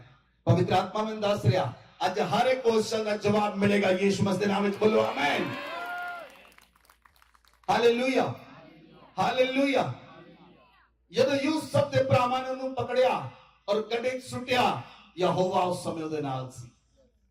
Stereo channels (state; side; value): identical; both; correlation 1.00